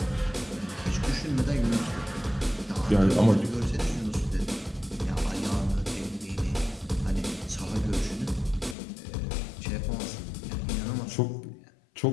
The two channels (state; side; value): drops out; right; at 8.8 s